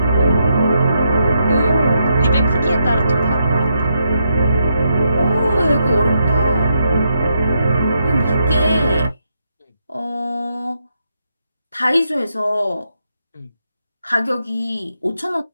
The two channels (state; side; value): inverted; both; correlation -0.81